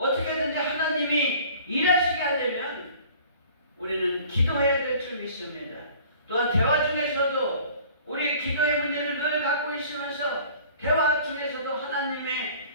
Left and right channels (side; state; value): both; inverted; correlation -0.49